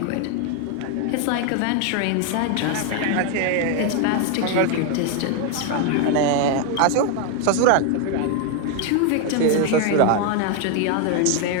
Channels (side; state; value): both; different; correlation 0.01